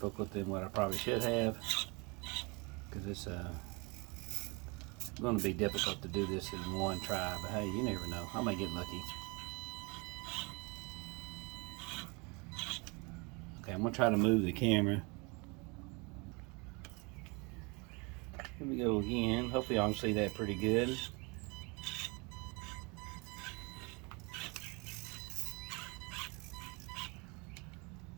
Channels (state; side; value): quieter; left; 29.3 dB